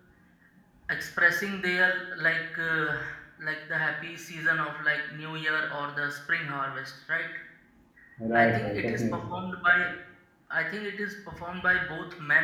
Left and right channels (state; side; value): identical; both; correlation 1.00